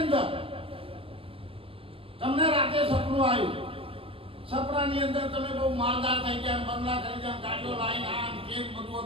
અંદર તમને રાતે સપનું આવ્યું, સપનાની અંદર તમે બહુ માલદાર થઈ ગયા, બંગલા કરી ગયા, ગાડીઓ લાઈન આમ કેમ બધું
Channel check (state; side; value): late; left; 0.27 ms